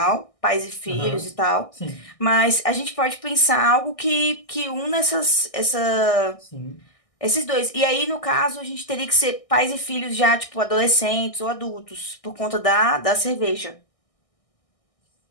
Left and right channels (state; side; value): late; right; 1.6 ms